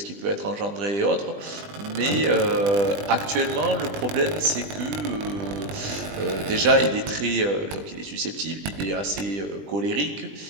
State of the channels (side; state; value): left; late; 20 ms